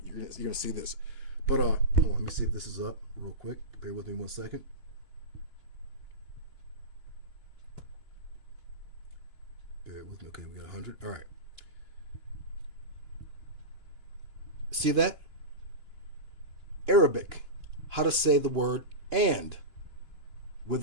You're gonna see this, but hold on, let me see if this is up real quick. Bear with me 1 second. Bear with me. Okay, we got 100. All right. See that? Arabic. How to say the word and with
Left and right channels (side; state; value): left; late; 2.9 ms